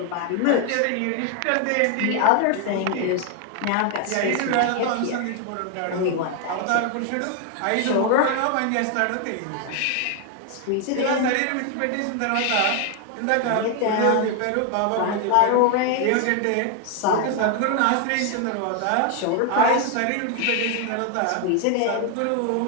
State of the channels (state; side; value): different; both; correlation 0.00